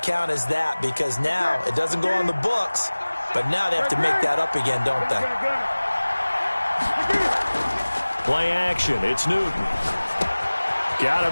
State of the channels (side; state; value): both; inverted; correlation -1.00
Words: as that because now it doesn't go on the books, but now they have to make that up again, don't they? Play action. It's Newton. Got